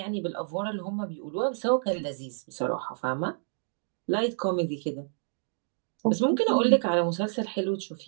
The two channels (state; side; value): silent; left; digital silence